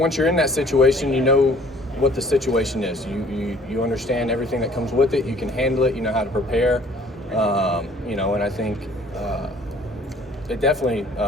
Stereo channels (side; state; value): both; normal; correlation 0.55